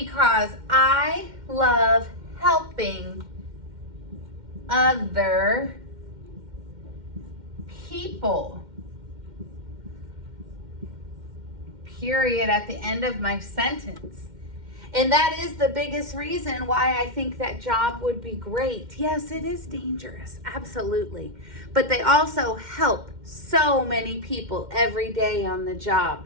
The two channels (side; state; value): left; late; 2.1 ms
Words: I love helping other people. Period at the end of my sentence. And that is the biggest reason why I think that job would be great. Yes, it is dangerous, absolutely. But they also help so many people every day on the job.